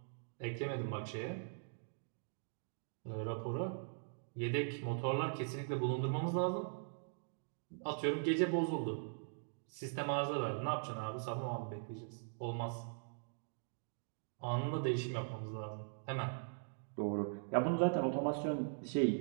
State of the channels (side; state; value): left; silent; digital silence